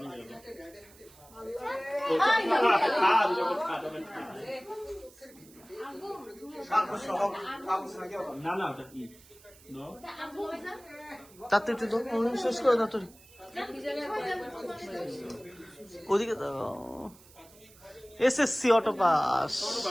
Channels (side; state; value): right; noise; hiss, 24 dB below the sound